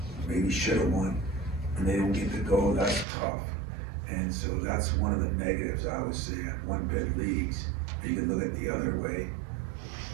maybe should have won, and they don't get to go. That's tough, and so that's one of the negatives I would say at one bid leagues. You can look at the other way.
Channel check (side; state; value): left; drops out; at 3.1 s